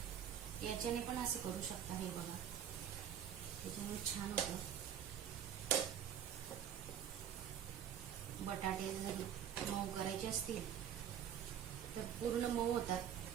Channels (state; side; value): quieter; left; 9.1 dB